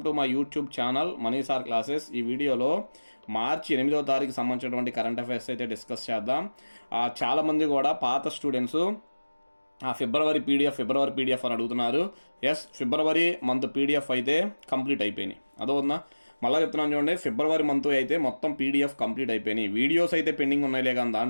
to my YouTube channel money sir classes. ఈ వీడియోలో మార్చి 8వ తారీఖు సంబంధించినటువంటి కరెంట్ అఫైర్స్ అయితే డిస్కస్ చేద్దాం. చాలామంది కూడా పాత స్టూడెంట్స్ ఫిబ్రవరి పీడిఎఫ్ అని అడుగుతున్నారు. ఎస్, ఫిబ్రవరి మంత్ పీడిఎఫ్ అయితే కంప్లీట్ అయిపోయినాయి. అదోనా మళ్ళీ చెప్తున్నాను చూడండి, ఫిబ్రవరి మంత్ అయితే మొత్తం పీడిఎఫ్ కంప్లీట్ అయిపోయినాయి. వీడియోస్ అయితే పెండింగ్ ఉన్నాయిలే, కానీ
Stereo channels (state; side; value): inverted; both; correlation -1.00